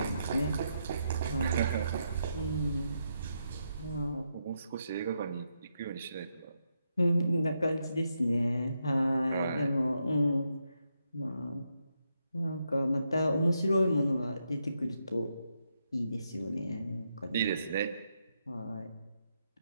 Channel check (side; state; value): both; inverted; correlation -0.81